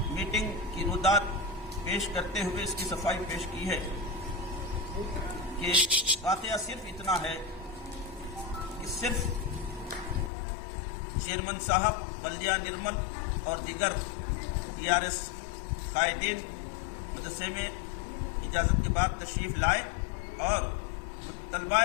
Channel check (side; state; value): right; drops out; at 10.3 s